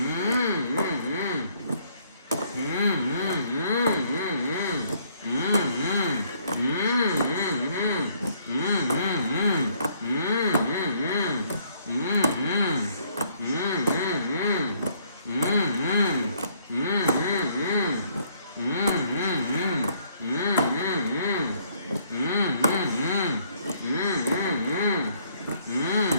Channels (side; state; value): both; inverted; correlation -0.66